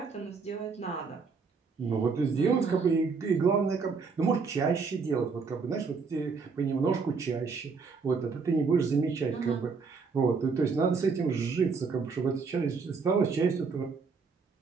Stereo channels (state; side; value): quieter; left; 5.0 dB